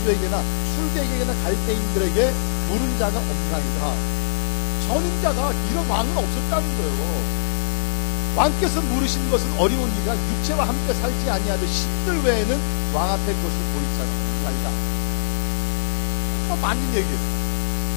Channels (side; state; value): right; silent; digital silence